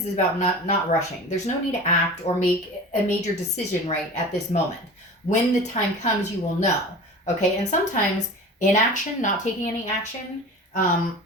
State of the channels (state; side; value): normal; both; correlation 0.36